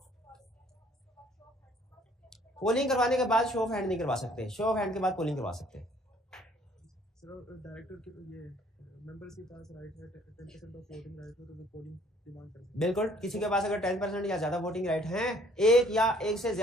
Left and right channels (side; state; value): both; normal; correlation 0.59